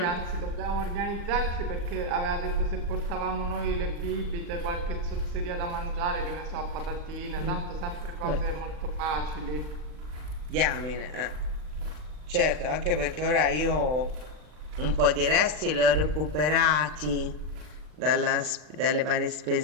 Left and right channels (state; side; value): late; left; 39 ms